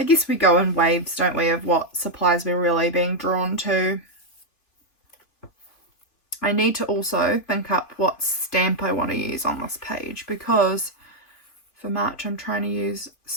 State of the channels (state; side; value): late; right; 2.8 ms